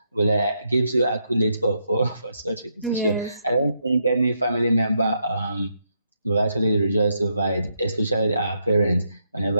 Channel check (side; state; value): both; inverted; correlation -0.79